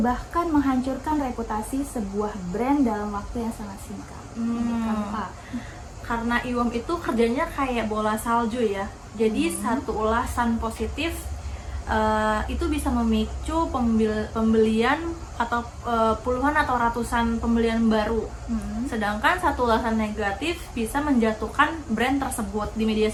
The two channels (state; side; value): identical; both; correlation 1.00